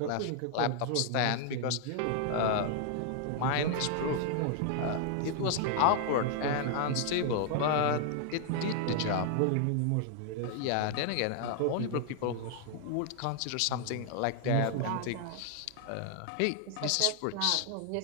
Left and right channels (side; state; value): both; different; correlation 0.00